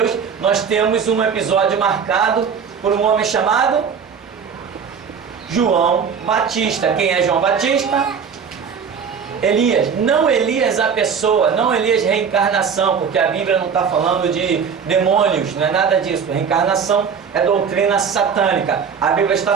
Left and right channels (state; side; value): quieter; left; 6.6 dB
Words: nós temos um episódio marcado por um homem chamado João Batista. Quem é João Batista? Elias. Não Elias a pessoa, não Elias reencarnação, porque a Bíblia não está falando de demônios, não é nada disso. Reencarnação é doutrina satânica. A Bíblia